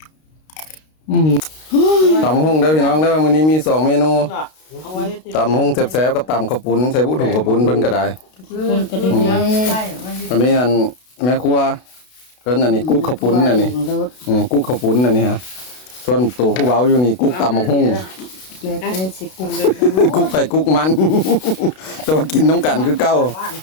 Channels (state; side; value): late; right; 32 ms